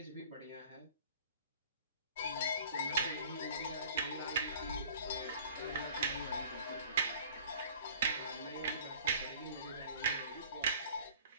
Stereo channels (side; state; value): both; inverted; correlation -0.47